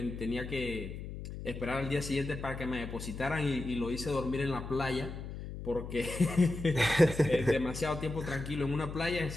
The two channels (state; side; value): noise; left; hum, 9 dB below the sound